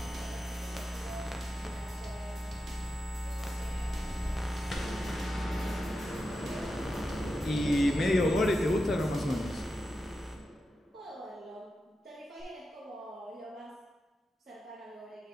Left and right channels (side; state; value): both; normal; correlation 0.90